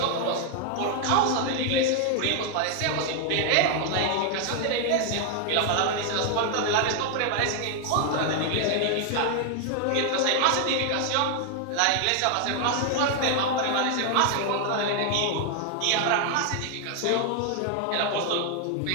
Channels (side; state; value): both; different; correlation 0.00